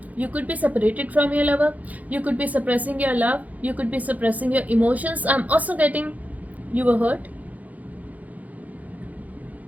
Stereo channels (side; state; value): left; late; 0.076 ms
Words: You could be separated from your lover, you could be suppressing your love, you could be suppressing your emotions. I'm also getting you were hurt.